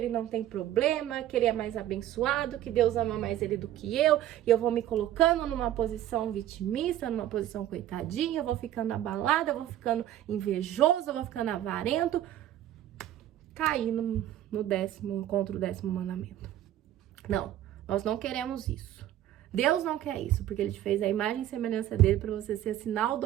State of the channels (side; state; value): left; quieter; 12.6 dB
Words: não tem problema, que ele é mais abençoado, que Deus ama mais ele do que eu, e eu vou me colocando numa posição vitimista, numa posição coitadinha, eu vou ficando abalada, eu vou ficando invejoso, eu vou ficando avarento, cair contra o 10º mandamento. Não. Nós não queremos isso. Deus não quer isso, porque Ele te fez a imagem e semelhança dele para você ser sinal do